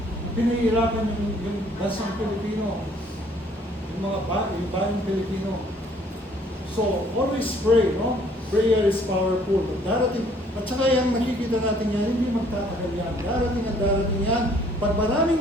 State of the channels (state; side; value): normal; both; correlation 0.60